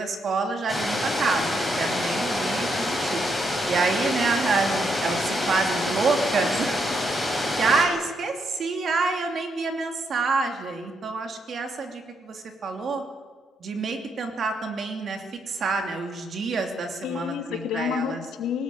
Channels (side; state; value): both; normal; correlation 0.77